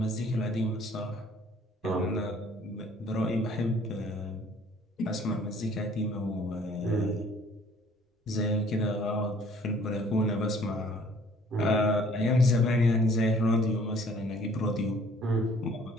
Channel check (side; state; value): both; normal; correlation 0.56